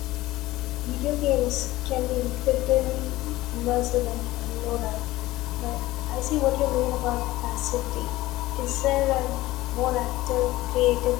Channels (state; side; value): quieter; right; 17.6 dB